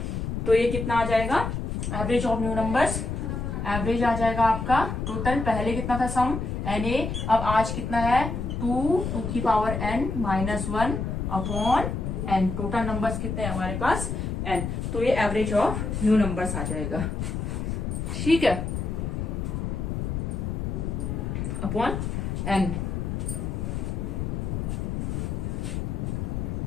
तो ये कितना आ जाएगा, average of new numbers, average आ जाएगा आपका टोटल, पहले कितना था सम Na, अब आज कितना है 2 की power n minus 1 upon n, total numbers कितने हैं हमारे पास n, तो ये एवरेज ऑफ न्यू नंबर्स आ जाएगा, ठीक है, अपॉन n।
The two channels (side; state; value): left; noise; rumble, 3 dB below the sound